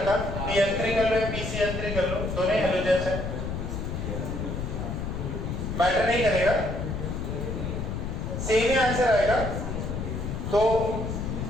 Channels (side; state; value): left; noise; rumble, 4 dB below the sound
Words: PF3 कर लो PCl3 कर लो, दोनों हेलोजेंस है, मैटर नहीं करेगा, सेम ही आंसर आएगा। तो